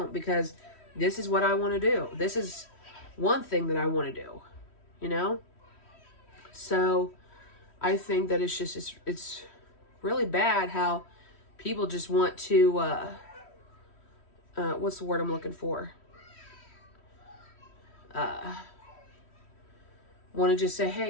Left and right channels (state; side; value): late; right; 3.1 ms